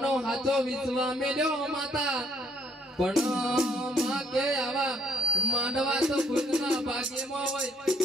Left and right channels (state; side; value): normal; both; correlation 0.67